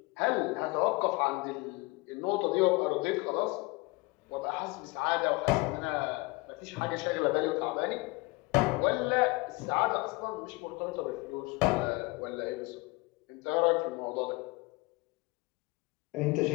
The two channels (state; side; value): quieter; right; 24.7 dB